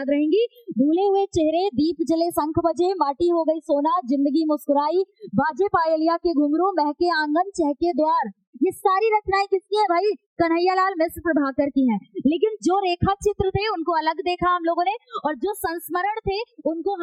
रहेंगी। भूले हुए चेहरे, दीप जले शंख बजे, माटी हो गई सोना, जिंदगी मुस्कुराई, बाजे पायलिया के घुंघरू, महके आंगन चहके द्वार, ये सारी रचनाएं किसकी है भाई? कन्हैयालाल मिश्र प्रभाकर की हैं। लेकिन जो रेखा चित्र थे उनको अलग देखा हम लोगों ने, और जो संस्मरण थे उनको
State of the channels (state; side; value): identical; both; correlation 1.00